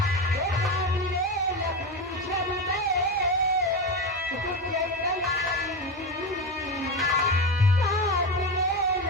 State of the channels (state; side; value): normal; both; correlation 0.18